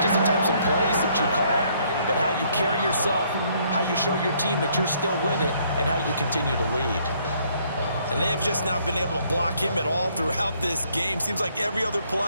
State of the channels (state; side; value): inverted; both; correlation -0.66